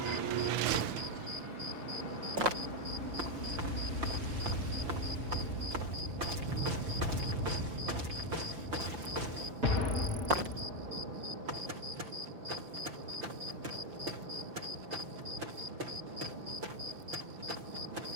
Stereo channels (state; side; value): late; left; 5.6 ms